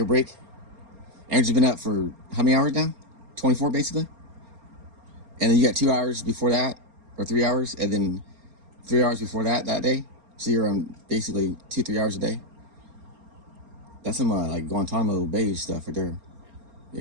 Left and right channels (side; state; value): left; late; 4.3 ms